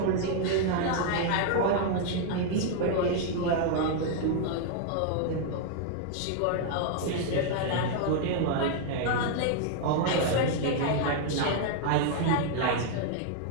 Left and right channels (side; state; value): both; different; correlation 0.00